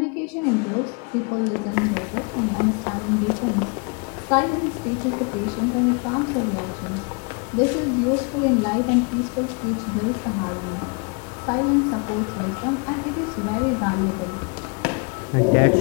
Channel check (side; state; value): right; quieter; 33.4 dB